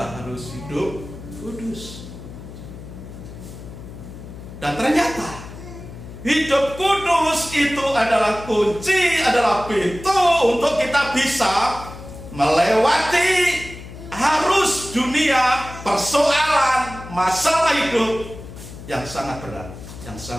harus hidup kudus. Dan ternyata hidup kudus itu adalah kunci, adalah pintu untuk kita bisa melewati arus dunia, persoalan, masalah hidup yang sangat berat, yang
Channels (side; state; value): left; noise; hum, 14 dB below the sound